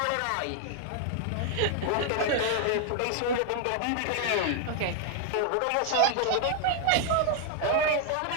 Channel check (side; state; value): both; different; correlation 0.00